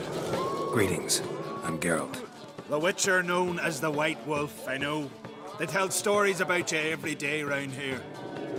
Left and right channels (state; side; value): identical; both; correlation 1.00